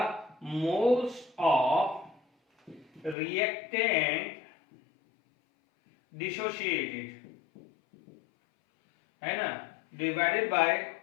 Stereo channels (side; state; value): right; drops out; at 3.2 s